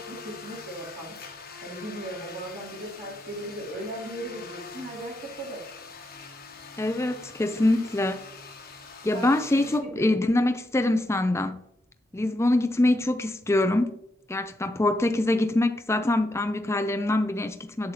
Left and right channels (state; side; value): normal; both; correlation 0.82